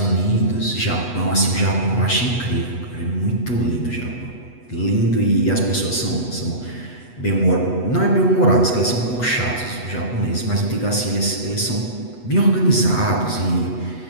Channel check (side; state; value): right; late; 8.2 ms